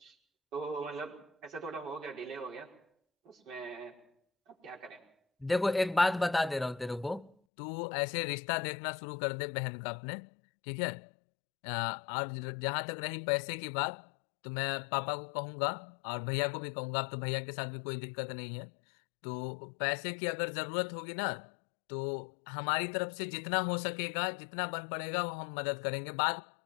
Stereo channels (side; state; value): right; drops out; at 7.4 s